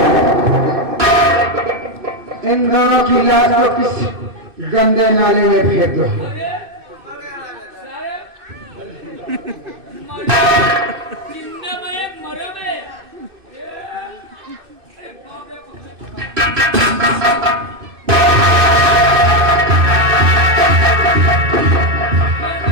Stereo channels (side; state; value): left; late; 2.6 ms